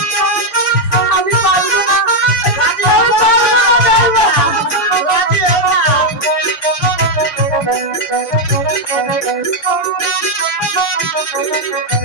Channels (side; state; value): right; late; 6.0 ms